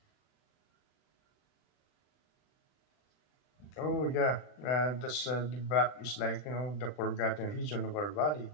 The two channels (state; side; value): late; right; 39 ms